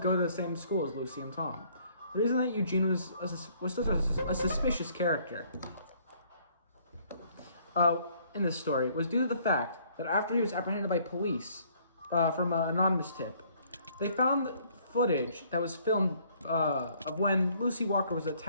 to the same school as Lucy and Tom. The reason that Eugene was such a suspicious character in this story was due to the fact that after he was apprehended by police from an anonymous tip, they found footage that was filmed of when Lucy Walker was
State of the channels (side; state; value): both; inverted; correlation -0.62